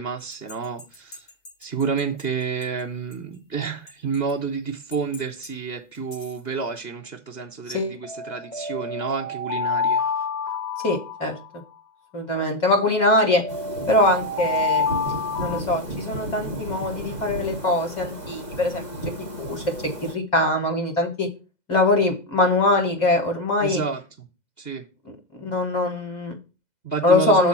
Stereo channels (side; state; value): right; late; 2.0 ms